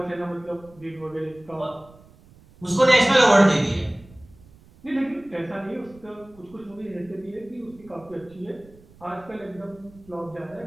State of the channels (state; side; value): noise; right; rumble, 25 dB below the sound